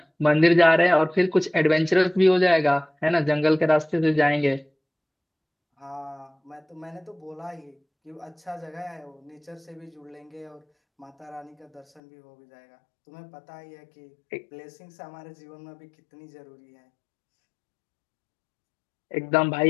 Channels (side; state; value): right; drops out; at 12.0 s